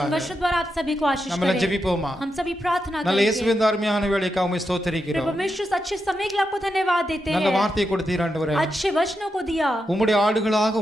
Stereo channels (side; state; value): both; normal; correlation 0.86